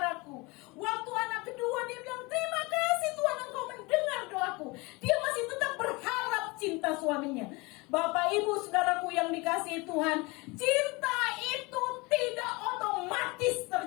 Waktu anak kedua, dia bilang, terima kasih Tuhan, Engkau mendengar doaku. Dia masih tetap berharap cinta suaminya. Bapak ibu saudaraku yang dikasih Tuhan, cinta itu tidak otomatis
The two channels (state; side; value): quieter; right; 25.4 dB